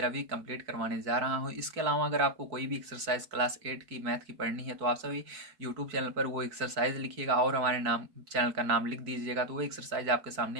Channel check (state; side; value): late; left; 4.5 ms